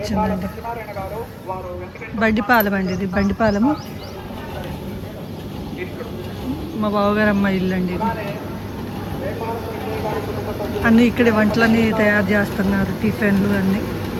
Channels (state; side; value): identical; both; correlation 1.00